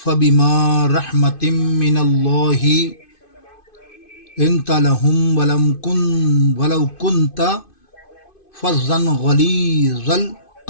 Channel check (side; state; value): right; late; 2.5 ms